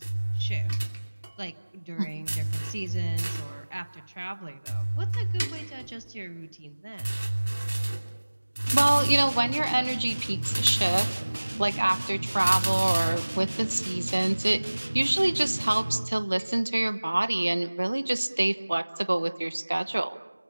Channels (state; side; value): inverted; both; correlation -1.00